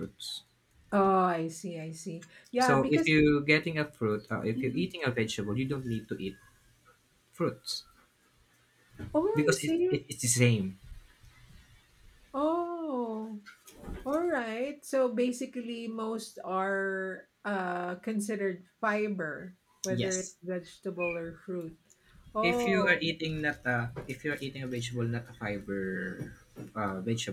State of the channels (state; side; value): identical; both; correlation 1.00